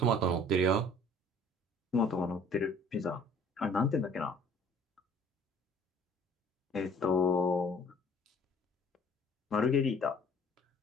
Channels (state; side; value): normal; both; correlation 0.54